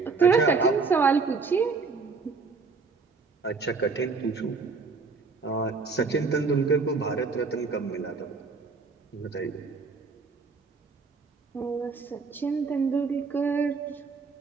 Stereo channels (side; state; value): left; quieter; 4.6 dB